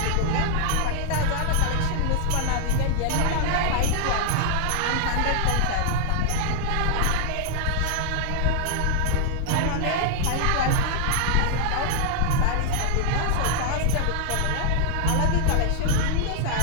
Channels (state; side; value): different; both; correlation -0.01